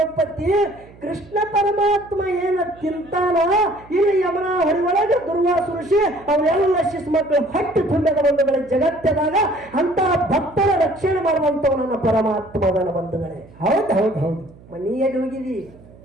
ಕೃಷ್ಣ ಪರಮಾತ್ಮ ಏನ ತಿಂತಾನ ಇಲ್ಲಿ ಯಮನ ಹೊರೊಳಗೆ ದುರ್ವಾಸ ಋಷಿ ಅವೆಲ್ಲ ಶಿಶು ಮಕ್ಕಳು ಹೊಟ್ಟೆ ತುಂಬಿದ ಬಂಧುಗಳೇ. ಜಗತ್ತದಾಗ ಅಂತ ಭಕ್ತರ ರಕ್ಷಣೆ ಮಾಡುವಂತವ ನನ್ನ ಪರಮಾತ್ಮನ ಬಂಧುಗಳೇ. ಹೌದು ಹೌದು ಹೌದು. ಮನೆಯಲ್ಲಿ ಹೋಗಿದಿ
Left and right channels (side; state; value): right; noise; hum, 23 dB below the sound